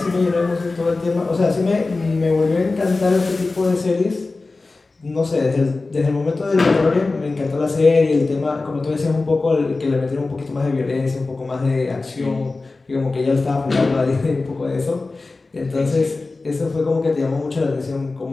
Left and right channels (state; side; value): quieter; right; 3.5 dB